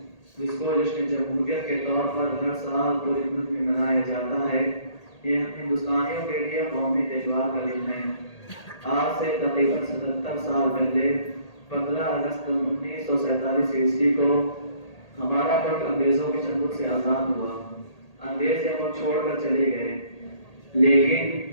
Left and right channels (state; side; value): late; right; 1.8 ms